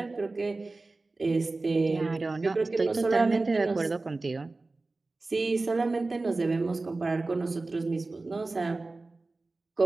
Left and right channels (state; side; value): quieter; left; 3.4 dB